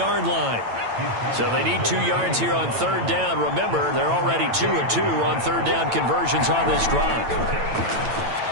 line. So they need 2 yards here on 3rd down. Remember, they're already 2-2 on 3rd down conversions on this drive.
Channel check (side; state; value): left; late; 8.9 ms